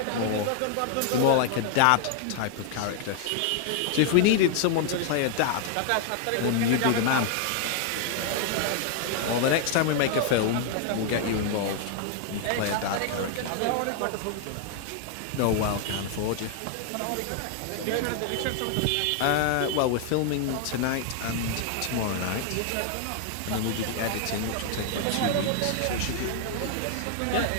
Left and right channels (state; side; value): different; both; correlation 0.00